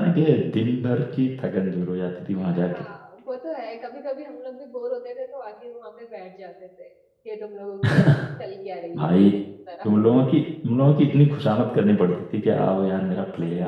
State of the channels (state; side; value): identical; both; correlation 1.00